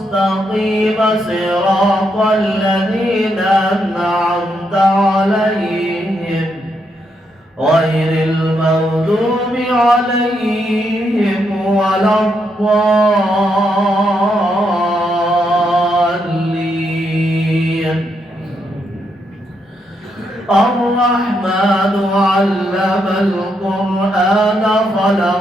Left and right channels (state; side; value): normal; both; correlation 0.79